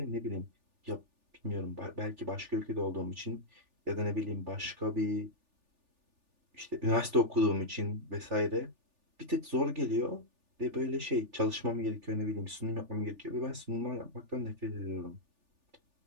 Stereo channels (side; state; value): left; late; 3.4 ms